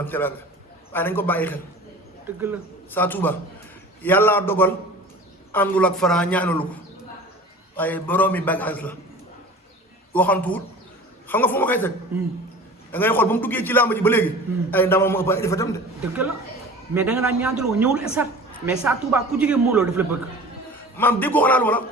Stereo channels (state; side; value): normal; both; correlation 0.40